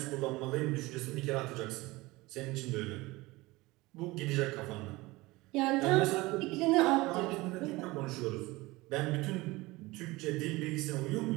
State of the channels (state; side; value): quieter; left; 21.2 dB